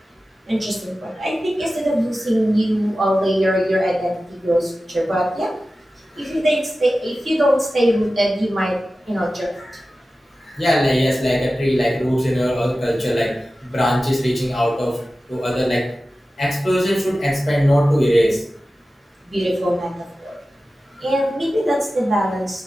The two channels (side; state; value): both; normal; correlation 0.95